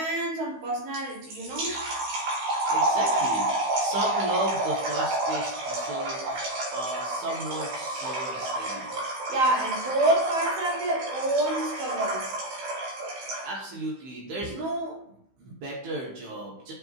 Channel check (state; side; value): late; left; 15 ms